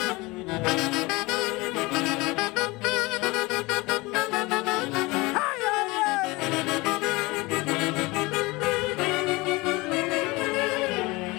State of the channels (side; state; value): right; quieter; 23.2 dB